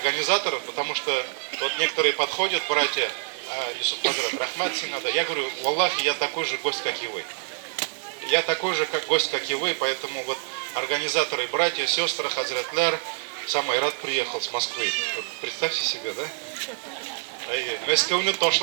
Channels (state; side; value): silent; left; 61 dB below the other